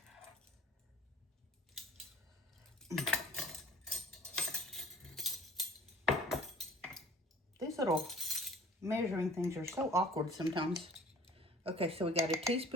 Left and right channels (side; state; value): both; normal; correlation 0.49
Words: These little measuring things are so awkward sometimes. Okay, so we got a